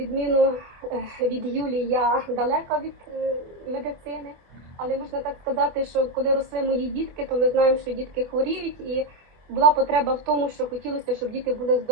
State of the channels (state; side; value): late; left; 25 ms